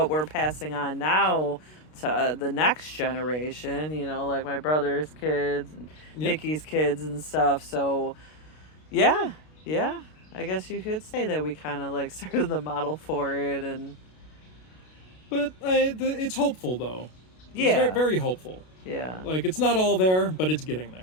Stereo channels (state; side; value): late; right; 32 ms